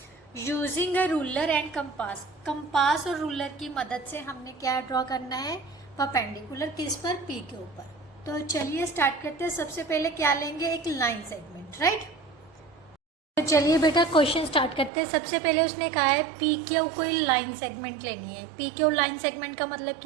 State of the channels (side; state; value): left; drops out; at 14.9 s